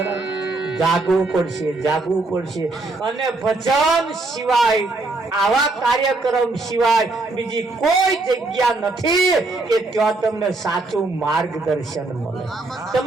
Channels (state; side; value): quieter; left; 3.2 dB